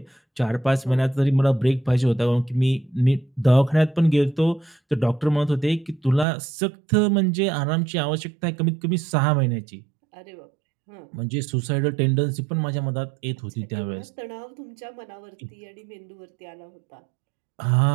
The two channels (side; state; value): left; drops out; at 6.2 s